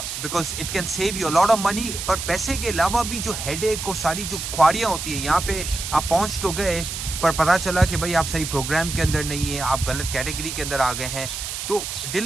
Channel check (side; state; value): right; noise; hiss, 6 dB below the sound